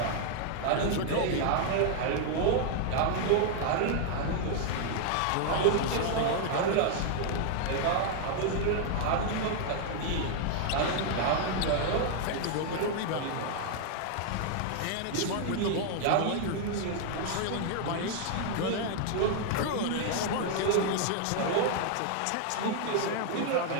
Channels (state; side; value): different; both; correlation 0.00